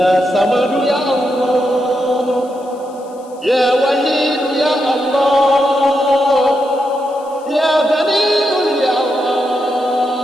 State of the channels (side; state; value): left; noise; hiss, 28 dB below the sound